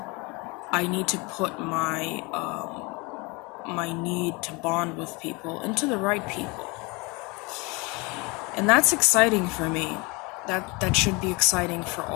I need to put my need to bond with people into the right people. And that's exciting for me. That should be exciting for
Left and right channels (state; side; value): quieter; right; 27.0 dB